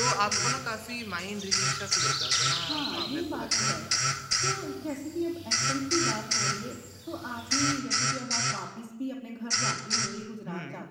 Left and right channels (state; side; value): identical; both; correlation 1.00